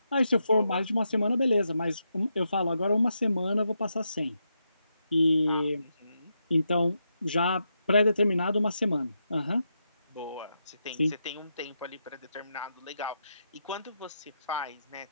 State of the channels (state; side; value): inverted; both; correlation -0.84